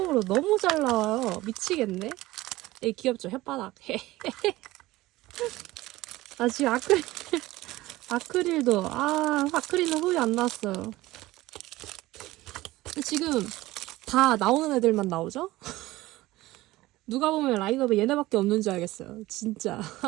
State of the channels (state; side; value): quieter; left; 18.0 dB